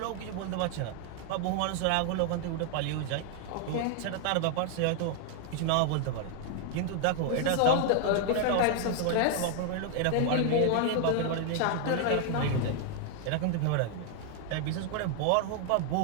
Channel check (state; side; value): different; both; correlation 0.00